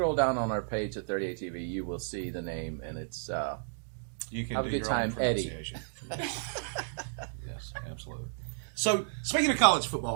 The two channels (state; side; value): silent; left; digital silence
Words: down on our page at 38 TV. You will see the name, and it's You can Have a do good your own time, Eddie. pronunciation. Yes, absolutely. So, speaking of college